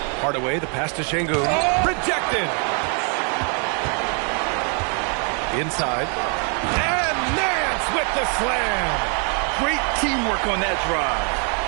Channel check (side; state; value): left; quieter; 39.9 dB